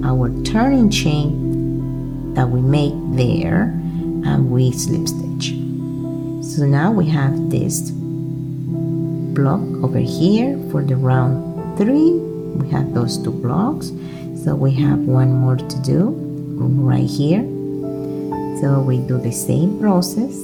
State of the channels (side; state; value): both; identical; correlation 1.00